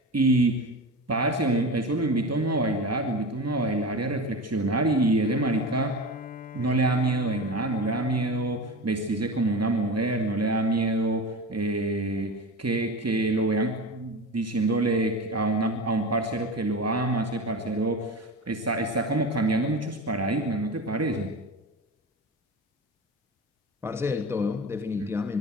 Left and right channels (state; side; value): normal; both; correlation 0.28